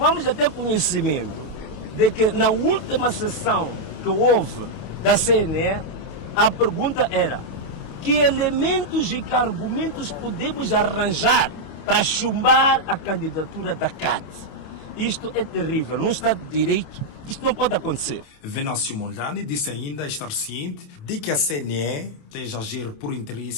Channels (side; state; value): right; late; 28 ms